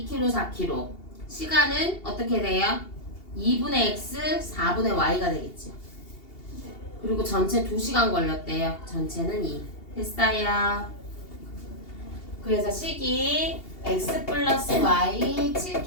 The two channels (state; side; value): late; right; 2.8 ms